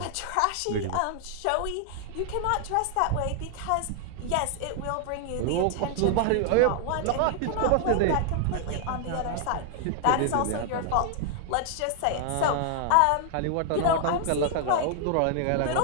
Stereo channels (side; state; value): both; different; correlation 0.00